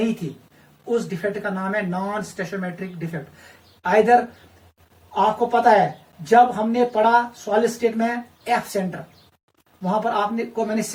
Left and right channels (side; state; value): both; identical; correlation 1.00